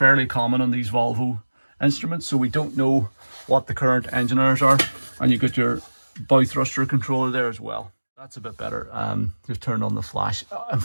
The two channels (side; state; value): both; inverted; correlation -1.00